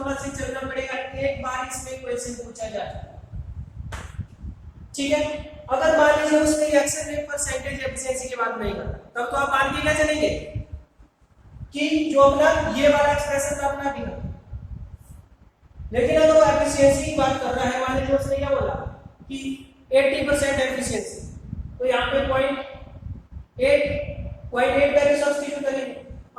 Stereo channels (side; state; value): both; identical; correlation 1.00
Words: से चलना पड़ेगा, एक बार इसमें क्वेश्चन पूछा जाए, ठीक है। अगर मान लीजिए उसने रिएक्शन रेट परसेंटेज एफिशिएंसी की बात नहीं करता, तब तो आप मान के क्या चलेंगे कि जो अपना ये वाला एक्सप्रेशन था अपना भी। लेकिन अगर वो एफिशिएंसी की बात कर रहा है, मान लीजिए उसने क्या बोला कि 80% एफिशिएंसी, तो यहाँ पे 0.8 वैल्यू सब्स्टिट्यूट करेंगे।